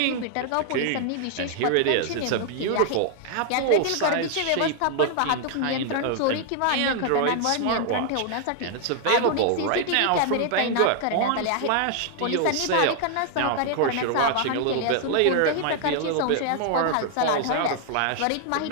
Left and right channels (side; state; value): both; different; correlation 0.00